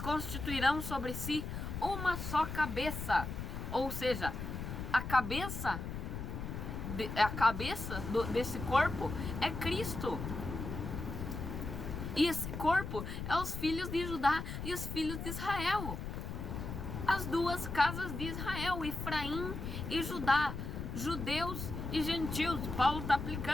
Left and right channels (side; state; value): left; noise; rumble, 6 dB below the sound